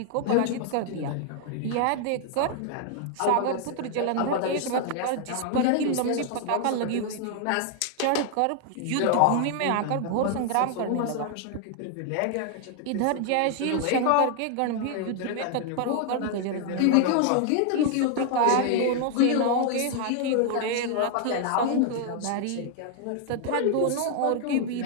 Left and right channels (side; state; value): both; different; correlation 0.00